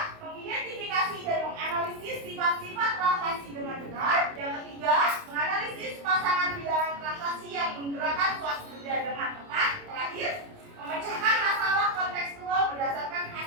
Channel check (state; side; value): late; left; 28 ms